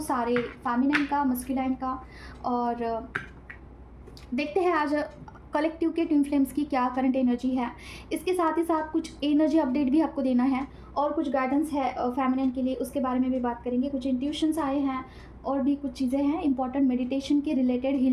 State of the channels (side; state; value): both; identical; correlation 1.00